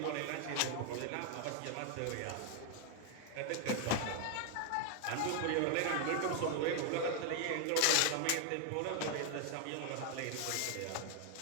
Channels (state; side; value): different; both; correlation 0.00